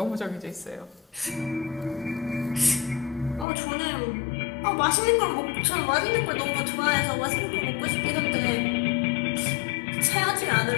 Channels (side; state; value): right; drops out; at 3.5 s